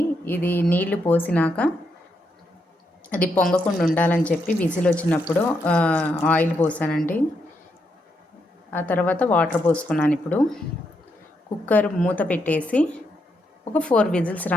ఇది నీళ్లు పోసినాక అది పొంగకుండా ఉండాలని చెప్పి విజిల్ వచ్చినప్పుడు ఆయిల్ పోసానండి. ఆ తర్వాత వాటర్ పోసుకున్నాను. ఇప్పుడు కుక్కర్ మూత పెట్టేసి ఒక 4 విజిల్స్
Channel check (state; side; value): normal; both; correlation 0.80